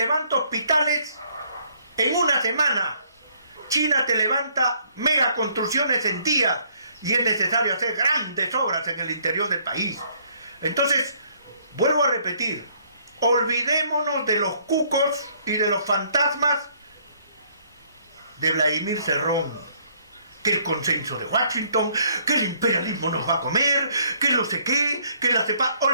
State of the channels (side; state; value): both; inverted; correlation -0.64